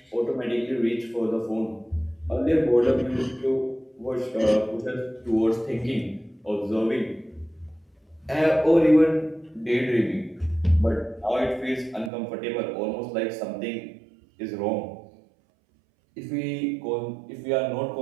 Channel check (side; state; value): left; drops out; at 12.1 s